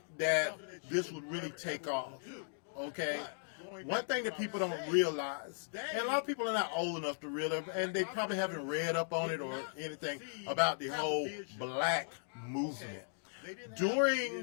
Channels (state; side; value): silent; right; digital silence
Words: that this would really take off. Okay, one thing that people don't realize, and a lot of people are not old enough to realize, and they probably haven't read up on it or anything about the whole black movement.